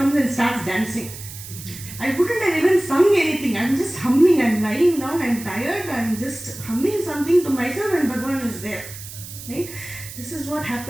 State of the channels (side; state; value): right; noise; hiss, 13 dB below the sound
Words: and starts dancing. I wouldn't have even sung anything. I'm just humming. I'm lying down. I'm tired. I'm just humming something to myself and Bhagavan is there. Right? This is what